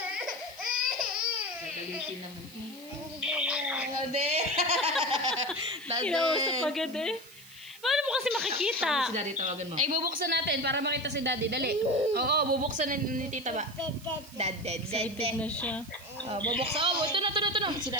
galitin naman. Daddy. Kinausap agad eh. Paano mo kasi makikita? Si Daddy tawagan mo. Ay, bubuksan natin para makita si Daddy. Dali. Oo, bubuksan ni Tita ba? Excited na siya. Oh, bubuksan. Oh, ito na. Si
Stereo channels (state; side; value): noise; right; hiss, 20 dB below the sound